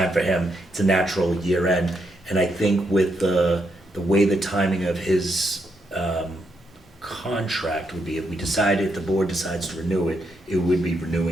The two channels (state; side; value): normal; both; correlation 0.79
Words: for him, it's a natural year end. And I think with the way the timing of his contract would be, if the board decides to renew it, it would be